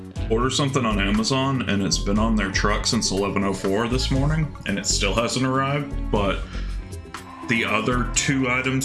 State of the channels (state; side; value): identical; both; correlation 1.00